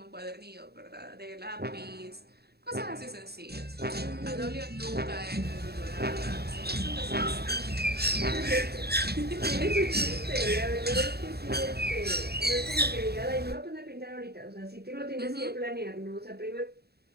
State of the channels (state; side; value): late; left; 0.47 ms